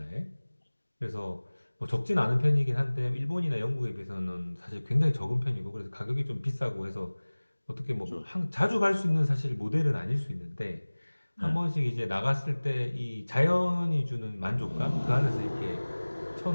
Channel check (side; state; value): both; inverted; correlation -1.00